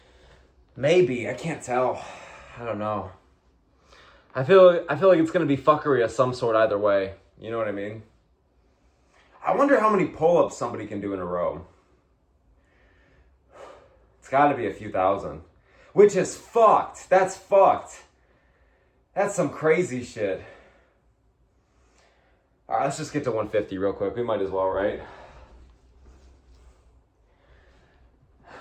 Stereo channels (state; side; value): identical; both; correlation 1.00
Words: Maybe. I can't tell. I don't know. I feel like it's going to be fuckery of some sort either way. You know what I mean? I wonder how many pull-ups somebody can do in a row. It's got to be a few thousand. Which is fucked. That's fucked. That's some crazy shit. All right, let's just get to 150 real quick. We might as well, right?